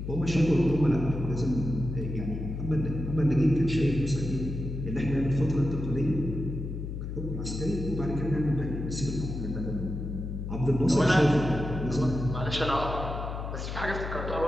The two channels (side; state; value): left; noise; hum, 6 dB below the sound